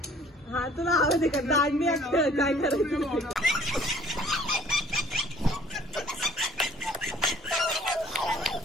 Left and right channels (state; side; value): normal; both; correlation 0.55